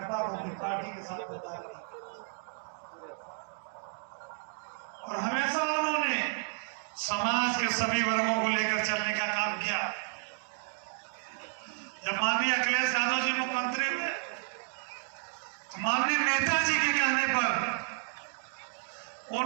को अपनी पार्टी के साथ गद्दारी नहीं करनी चाहिए। और हमेशा उन्होंने समाज के सभी वर्गों को लेकर चलने का काम किया। जब माननीय अखिलेश यादव जी मुख्यमंत्री हुए, तो माननीय नेताजी के कहने पर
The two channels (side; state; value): left; silent; 56 dB below the other